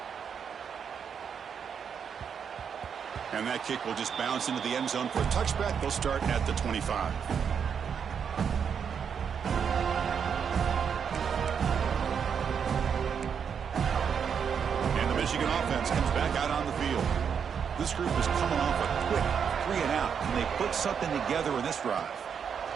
And that kick will just bounce into the end zone for a touchback. They'll start at the 25. And the Michigan offense comes back out on the field. This group is coming off a quick 3-and-out, and they put something together in this drive.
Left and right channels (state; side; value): quieter; left; 7.1 dB